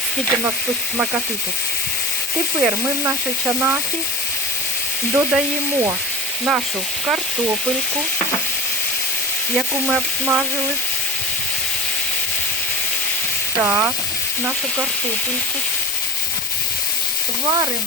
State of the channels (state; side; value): normal; both; correlation 0.31